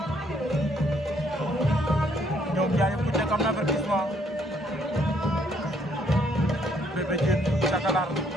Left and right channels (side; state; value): both; normal; correlation 0.68